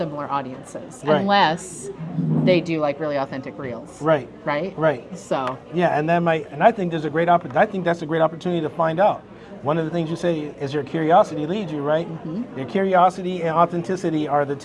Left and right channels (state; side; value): identical; both; correlation 1.00